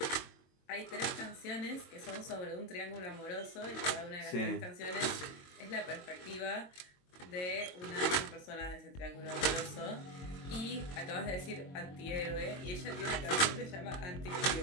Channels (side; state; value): right; late; 22 ms